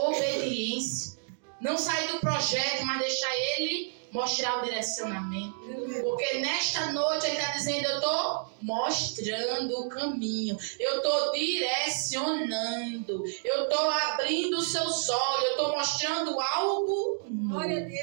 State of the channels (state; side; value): silent; left; digital silence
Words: Não sair do projeto, mas deixar ele mostrar o direcionamento. Porque nesta noite ele está dizendo, eu estou mostrando o caminho. Eu estou direcionando. Eu estou abrindo os seus olhos. Eu estou mostrando algo novo. Glória a